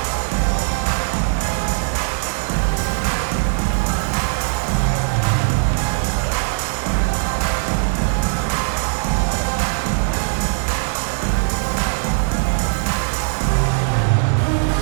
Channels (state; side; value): silent; left; digital silence